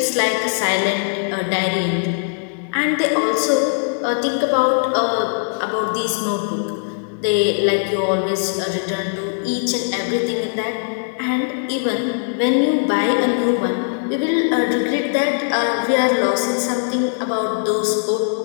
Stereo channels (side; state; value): right; silent; digital silence